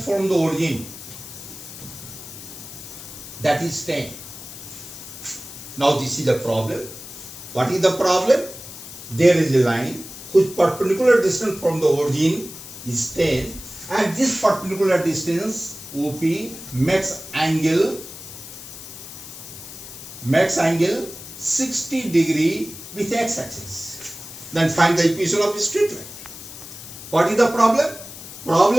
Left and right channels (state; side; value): noise; left; hiss, 13 dB below the sound